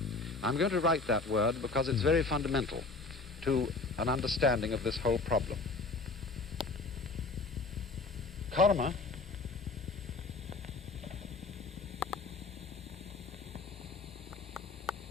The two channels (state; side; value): quieter; right; 3.8 dB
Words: I'm going to write that word because it's very fundamental to an understanding of this whole problem. Karma